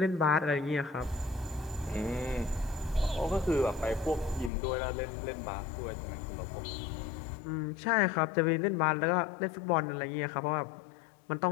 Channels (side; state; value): right; drops out; at 4.5 s